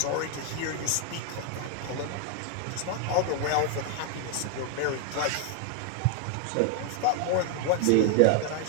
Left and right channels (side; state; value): both; different; correlation 0.00